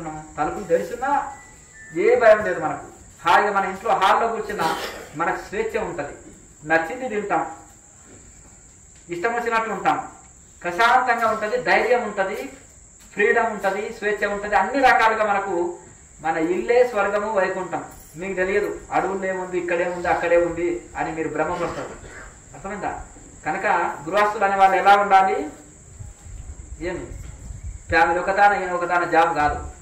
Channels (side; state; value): both; identical; correlation 1.00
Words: తలుపులు తెరిచున్నా ఏ భయం లేదు మనకు. హాయిగా మన ఇంట్లో హాల్లో కూర్చున్నా మనకు స్వేచ్ఛ ఉంటుంది, నచ్చింది తింటాం, ఇష్టం వచ్చినట్లు ఉంటాం, ప్రశాంతంగా ఉంటుంది, ధైర్యం ఉంటుంది, ఫ్రీడమ్ ఉంటుంది, స్వేచ్ఛ ఉంటుంది. అన్ని రకాలుగా మనకు మన ఇల్లే స్వర్గము, వైకుంఠం. మీకు తెలియదు అడవుల్లో ఏముంది, ఇక్కడేముంది, అక్కడే ఉంది అని మీరు భ్రమపడతారు. అర్థమైందా? కనుక గృహస్థులు అనే వాళ్ళు ఎలా ఉండాలి? ఏమి ఫ్యామిలీ ఒకదాన ఈయన ఒకదాన జాబ్ కాదు,